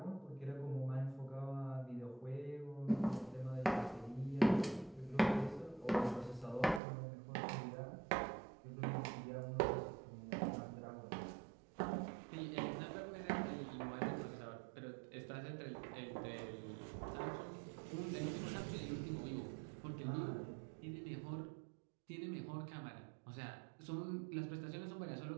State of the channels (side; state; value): left; drops out; at 6.8 s